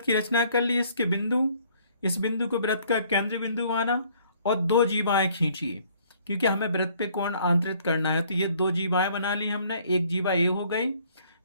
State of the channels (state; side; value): inverted; both; correlation -0.61